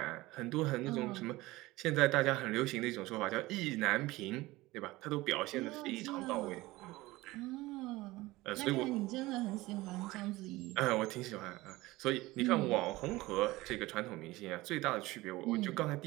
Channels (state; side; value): quieter; left; 19.5 dB